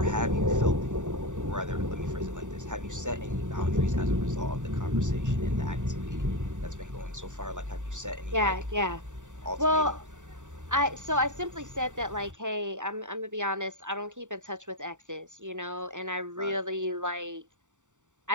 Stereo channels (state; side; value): late; left; 0.86 ms